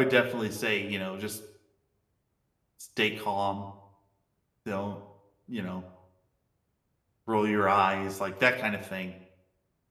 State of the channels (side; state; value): both; identical; correlation 1.00